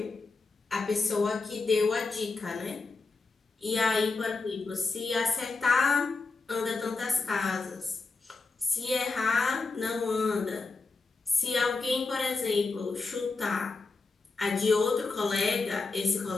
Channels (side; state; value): right; quieter; 4.0 dB